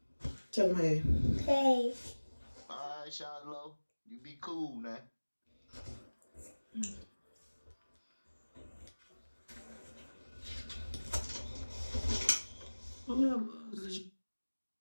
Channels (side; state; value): both; inverted; correlation -1.00